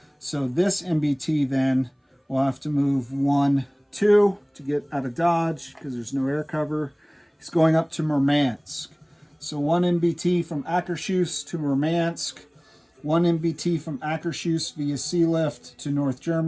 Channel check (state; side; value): identical; both; correlation 1.00